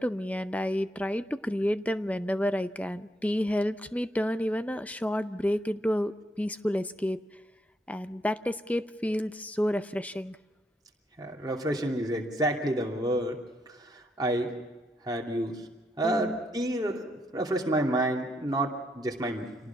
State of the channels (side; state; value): both; normal; correlation 0.77